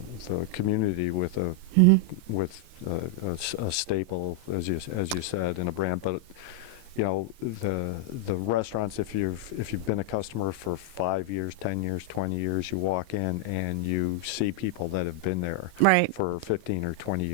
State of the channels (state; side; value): late; left; 31 ms